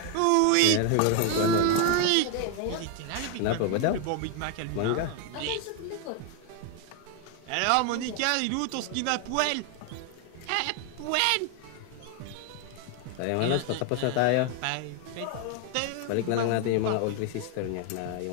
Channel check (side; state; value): both; different; correlation 0.01